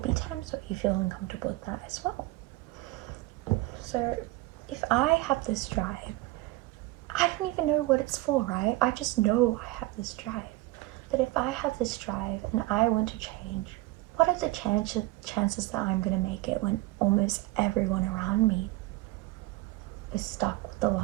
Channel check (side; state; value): left; quieter; 18.8 dB